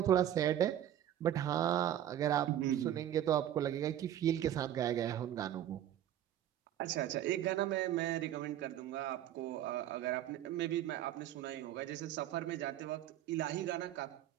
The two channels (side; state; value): left; quieter; 11.6 dB